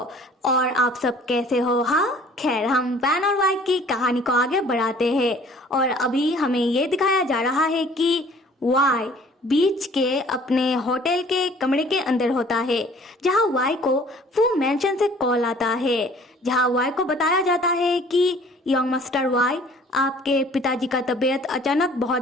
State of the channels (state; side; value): normal; both; correlation 0.52